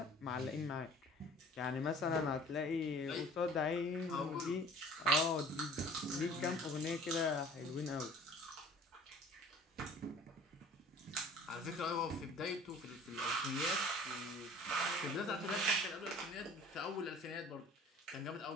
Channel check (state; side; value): normal; both; correlation 0.48